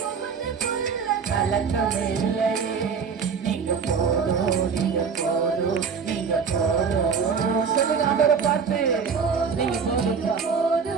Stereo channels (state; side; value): quieter; left; 5.9 dB